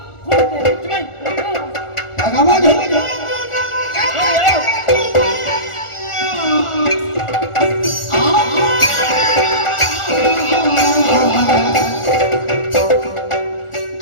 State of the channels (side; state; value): right; late; 1.4 ms